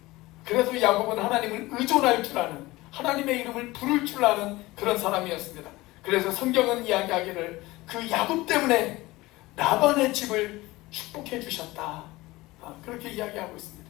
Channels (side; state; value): right; quieter; 19.9 dB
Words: 그래서 야곱은 하나님을 의존할 줄 아는, 하나님의 이름을 부를 줄 아는 그런 사람이었습니다. 그래서 성경은 이야기하기를 그 야곱 때문에 라반의 집을 축복해 주셨다, 그렇게 이야기하고